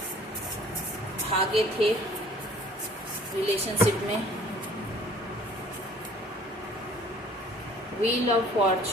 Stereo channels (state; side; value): normal; both; correlation 0.52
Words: भागे थे रिलेशनशिप में। व्हील ऑफ